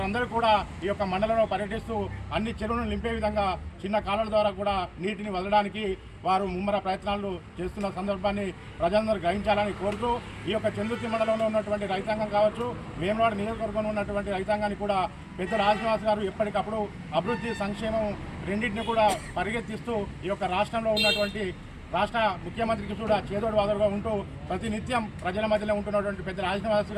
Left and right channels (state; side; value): identical; both; correlation 1.00